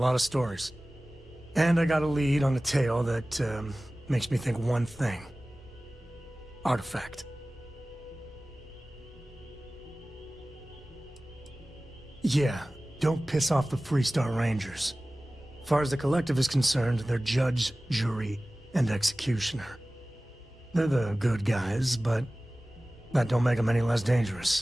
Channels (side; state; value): both; normal; correlation 0.97